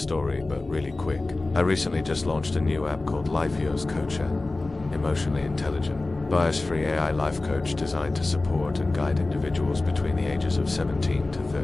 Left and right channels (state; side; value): quieter; right; 3.1 dB